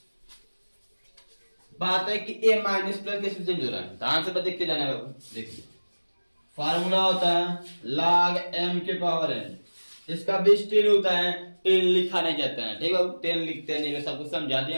बात है कि ए माइनस प्लस कैसे चेंज हो रहा है, ध्यान से देखते जाना है बाबू। देखिए फार्मूला होता है log m के पावर n, इसका बेस 10 होता है, 10 लिखा नहीं जाता है, ठीक है, 10 लिखते नहीं, सब कुछ समझा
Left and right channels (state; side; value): inverted; both; correlation -1.00